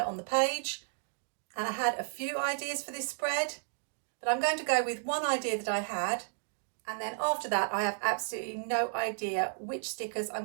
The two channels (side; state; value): left; silent; digital silence